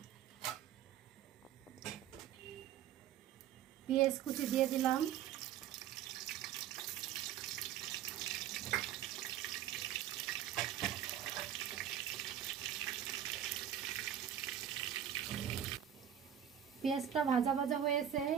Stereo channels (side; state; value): left; quieter; 10.1 dB